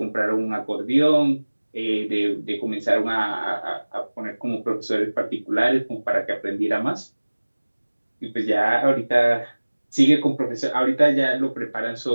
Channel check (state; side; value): inverted; both; correlation -1.00